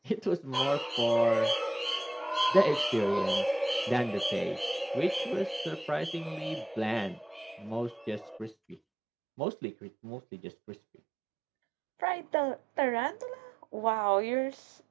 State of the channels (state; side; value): drops out; left; at 8.8 s